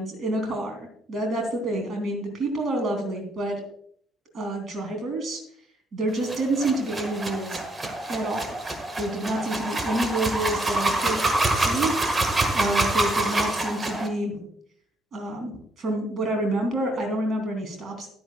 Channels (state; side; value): normal; both; correlation 0.72